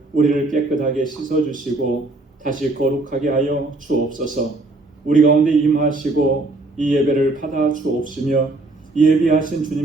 우리를 깨끗하게 씻어주시고 다시 거룩하게 하여 주옵소서. 우리 가운데 임하시고 이 예배를 받아 주옵시며 예비하신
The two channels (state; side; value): quieter; left; 3.0 dB